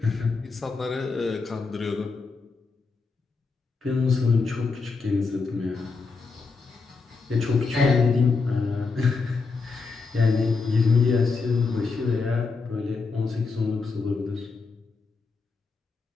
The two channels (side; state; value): right; quieter; 4.4 dB